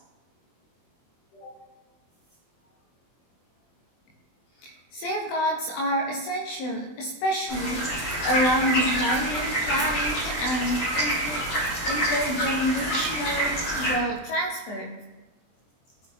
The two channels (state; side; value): late; right; 23 ms